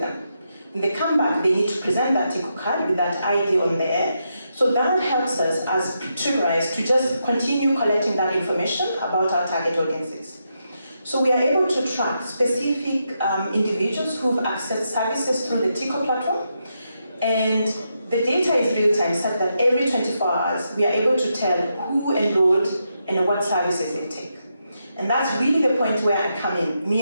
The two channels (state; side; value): inverted; both; correlation -0.83